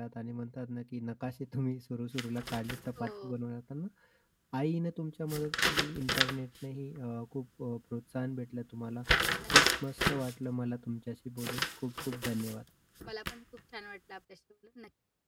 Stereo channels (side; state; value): both; identical; correlation 1.00